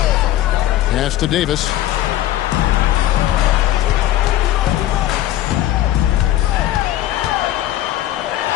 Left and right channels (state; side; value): quieter; right; 13.7 dB